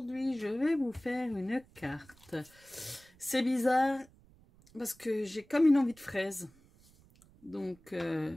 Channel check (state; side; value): noise; right; rumble, 27 dB below the sound